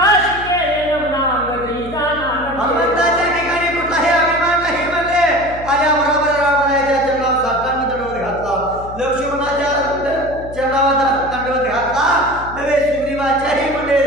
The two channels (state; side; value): noise; left; hum, 14 dB below the sound